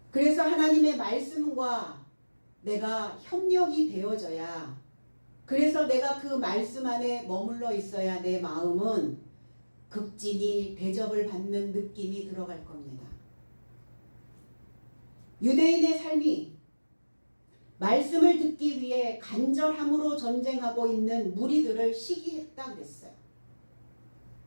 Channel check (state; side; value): inverted; both; correlation -1.00